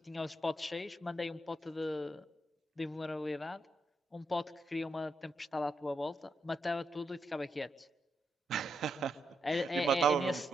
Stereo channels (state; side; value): normal; both; correlation 0.82